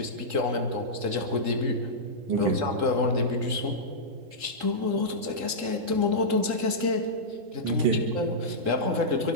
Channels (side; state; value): left; late; 3.8 ms